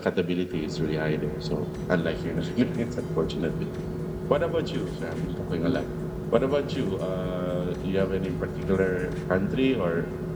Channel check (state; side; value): identical; both; correlation 1.00